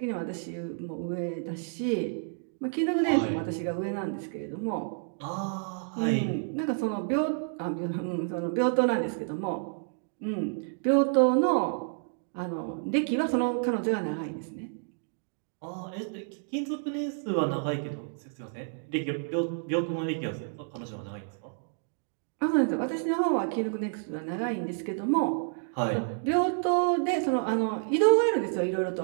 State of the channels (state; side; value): silent; left; digital silence